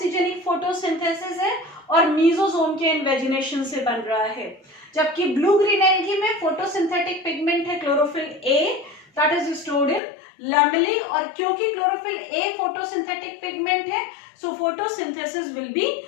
photosynthesis है, और मीजोसोम के इन्वेजिनेशन से बन रहा है। जबकि ब्लू ग्रीन एल्गी में फोटोसिंथेटिक पिगमेंट है chlorophyll A that is stored in lamellae, और क्योंकि क्लोरोफिल ए फोटोसिंथेटिक पिगमेंट है so photosynthesis will be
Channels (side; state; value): right; drops out; at 10.0 s